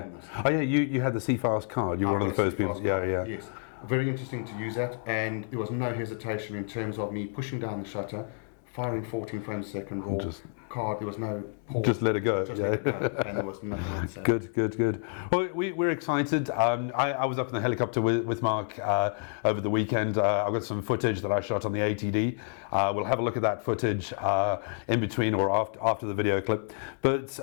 Oh yeah, you had the C-Fast card. You were one of the first people. Yes. Very interesting to use that, and there was no hesitation in terms of me pushing down the shutter, firing 14 frames a second RAW. Card, there was no pause. Just let it go. Just let it go, and there was nothing else. Good. Well, we're excited. I was up in the helicopter with Mark over the weekend. I've got some footage that I shot on the ATD. We'll have a look at that footage in between or after the video clip. But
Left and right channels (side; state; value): right; silent; 59 dB below the other